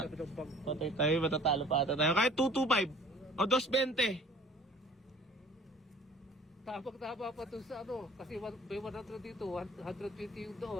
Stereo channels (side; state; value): both; normal; correlation 0.50